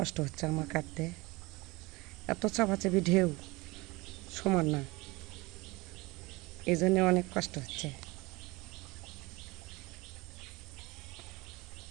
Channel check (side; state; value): left; quieter; 23.1 dB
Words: হচ্ছে আমার কাটতে। এত চাপাচাপি ঢেউ, সমান না, এই জন্যে অনেক কষ্ট হচ্ছে।